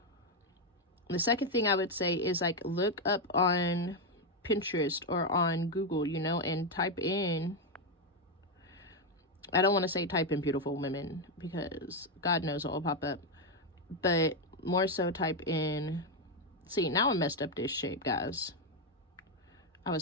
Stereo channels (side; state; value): both; normal; correlation 0.05